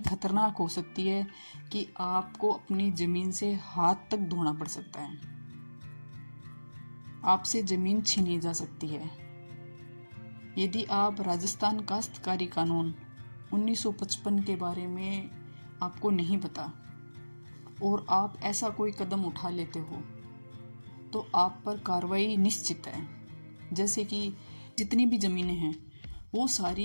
हो सकती है कि आपको अपनी जमीन से हाथ तक धोना पड़ सकता है। आपसे जमीन छीनी जा सकती है यदि आप राजस्थान काश्तकारी कानून 1955 के बारे में आपको नहीं पता और आप ऐसा कोई कदम उठा लेते हो तो आप पर कार्रवाई निश्चित है। जैसे कि जितनी भी ज़मीनें हैं वो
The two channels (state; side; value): inverted; both; correlation -1.00